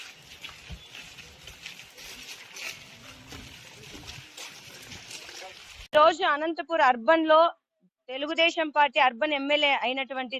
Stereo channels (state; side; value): identical; both; correlation 1.00